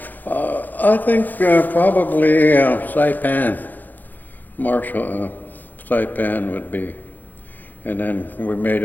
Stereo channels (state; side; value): late; right; 0.085 ms